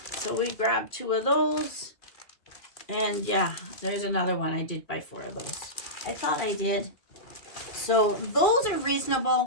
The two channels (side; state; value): right; late; 2.4 ms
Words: So we grabbed 2 of those. And yeah, there's another one. I did buy 4 of those. I thought I did. So those are